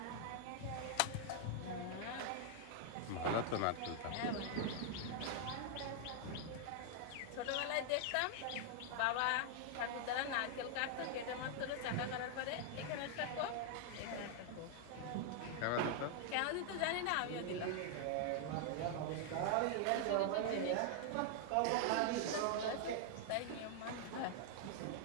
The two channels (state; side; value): different; both; correlation 0.00